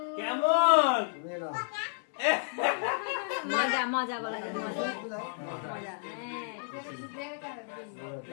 কেমন মজা মজা বলা যায়, মজা মজা,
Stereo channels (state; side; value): silent; right; 57 dB below the other